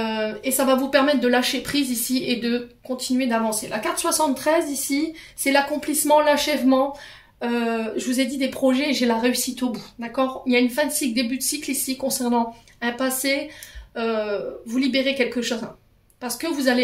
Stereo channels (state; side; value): identical; both; correlation 1.00